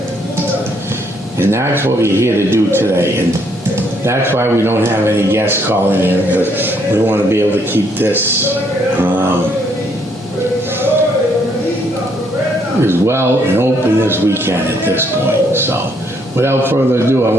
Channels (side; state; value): both; normal; correlation 0.70